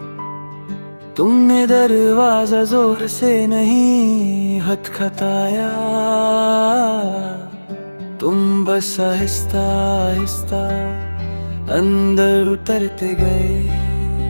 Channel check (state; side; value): inverted; both; correlation -1.00